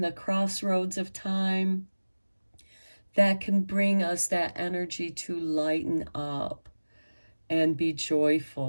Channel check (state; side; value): inverted; both; correlation -1.00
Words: the crossroads of time, that can bring us that energy to lighten up and be